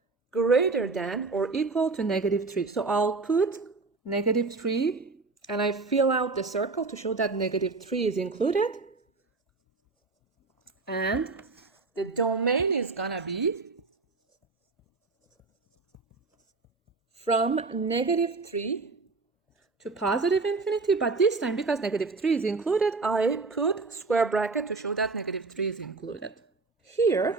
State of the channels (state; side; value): quieter; left; 4.0 dB